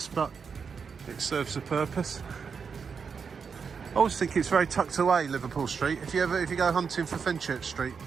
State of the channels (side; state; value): left; quieter; 6.0 dB